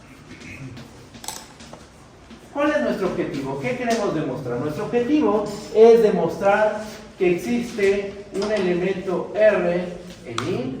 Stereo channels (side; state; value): both; identical; correlation 1.00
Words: ¿Cuál es nuestro objetivo? ¿Qué queremos demostrar? Nuestro objetivo es demostrar que existe un elemento R en